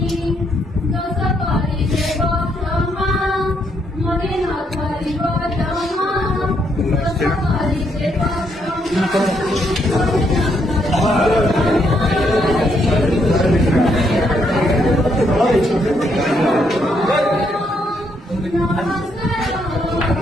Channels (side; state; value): both; normal; correlation 0.74